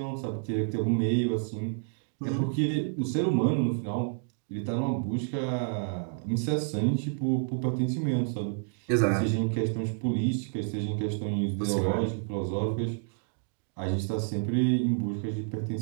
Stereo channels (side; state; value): left; silent; digital silence